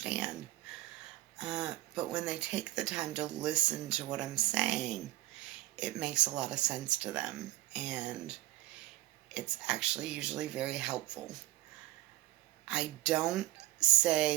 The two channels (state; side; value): quieter; left; 17.7 dB